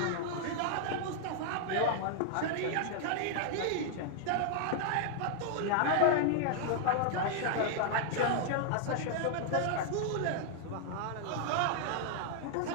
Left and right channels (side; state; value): both; different; correlation 0.00